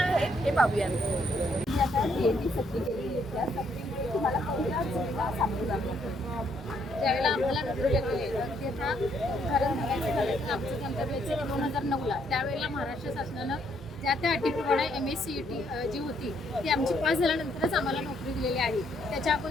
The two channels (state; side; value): normal; both; correlation 0.71